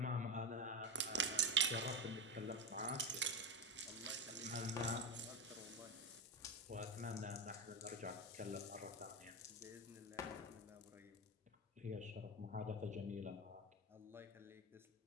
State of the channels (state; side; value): normal; both; correlation 0.16